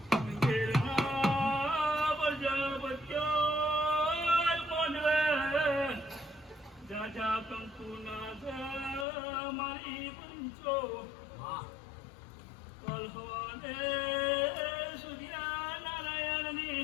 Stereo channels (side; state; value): right; drops out; at 9.1 s